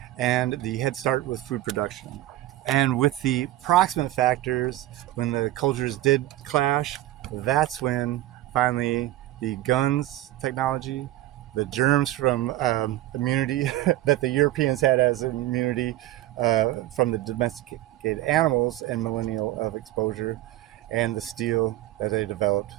and the head start with food production. And with the proximate factors, when the cultures did clash, that's when finally the guns technology, the germs from immunity that the Europeans had as immunity from the domesticated animals and millennial of exposure, and the steel that they developed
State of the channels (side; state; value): left; quieter; 15.2 dB